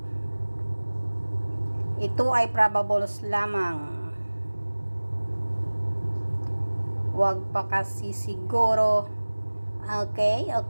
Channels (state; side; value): inverted; both; correlation -1.00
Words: Ito ay probables lamang. Huwag pa kasi siguro. Okay.